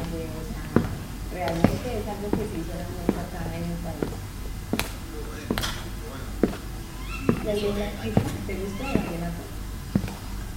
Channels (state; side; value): identical; both; correlation 1.00